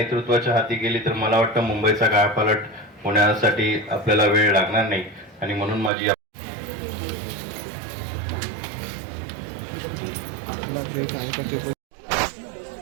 हाती गेली तर मला वाटतं मुंबईचा कायापालट होण्यासाठी आपल्याला वेळ लागणार नाही. आणि म्हणून माझी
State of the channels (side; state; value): left; drops out; at 5.9 s